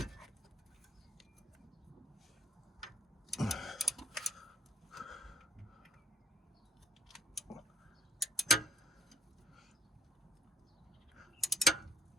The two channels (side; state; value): both; normal; correlation 0.67